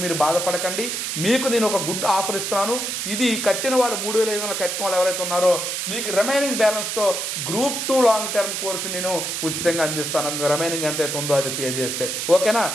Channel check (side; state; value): right; noise; hiss, 3 dB below the sound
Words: మీరు బాధపడకండి. మీకు నేను ఒక గుడ్ ఆఫర్ ఇస్తున్నాను. ఇది కట్టిన వాళ్ళు 3,500 కట్టిన వాళ్ళు ఎవరైతే ఉన్నారో మీకు రిమైనింగ్ బ్యాలెన్స్తో Group 2 లాంగ్ టర్మ్ కోర్సు నేను ఉచితంగా అందిస్తాను. రిమైనింగ్ ఎంత అయితే ఉందో అది పే చేస్తే. ఓకేనా,